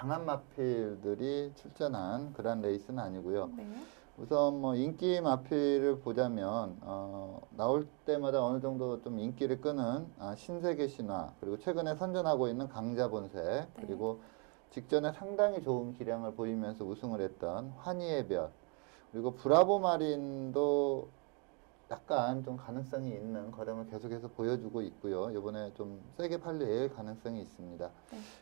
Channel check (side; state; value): left; quieter; 35.3 dB